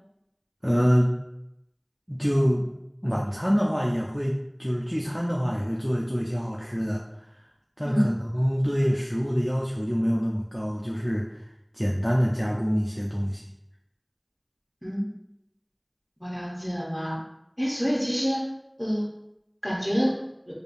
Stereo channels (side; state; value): both; identical; correlation 1.00